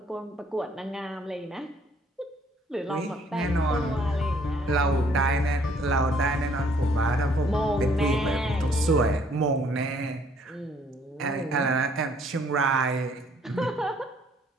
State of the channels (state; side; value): normal; both; correlation 0.63